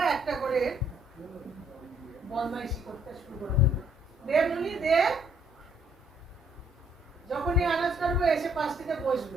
একটা করে বদমাইশি করতে শুরু করে দেবে। দে মুনি দে, যখনই আনাজ করবো এসে পাশটিতে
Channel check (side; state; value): both; normal; correlation 0.66